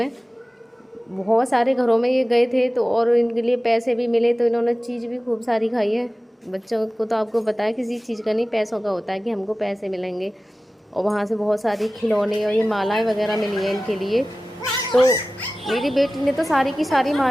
बहुत सारे घरों में ये गए थे तो, और इनके लिए पैसे भी मिले, तो इन्होंने चीज़ भी खूब सारी खाई है। बच्चों को तो आपको पता है किसी चीज़ का नहीं, पैसों का होता है कि हमको पैसे मिलेंगे। और वहाँ से बहुत सारी खिलौने और ये मालाएं वगैरह मिली हैं इनके लिए। तो मेरी बेटी ने तो सारी की सारी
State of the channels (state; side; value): normal; both; correlation 0.96